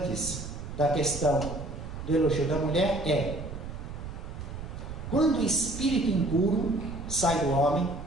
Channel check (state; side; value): noise; right; rumble, 9 dB below the sound